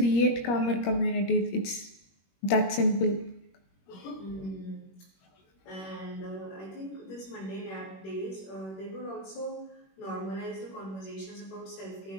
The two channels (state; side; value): late; right; 21 ms